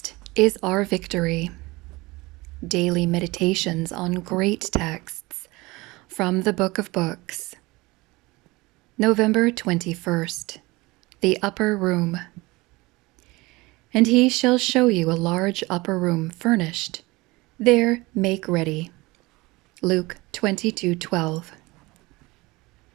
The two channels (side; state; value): left; quieter; 22.2 dB